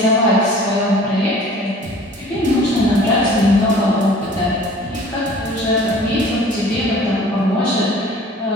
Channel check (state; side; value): normal; both; correlation 0.48